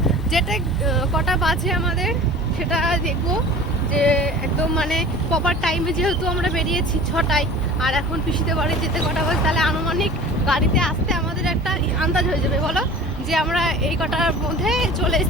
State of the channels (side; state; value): both; normal; correlation 0.41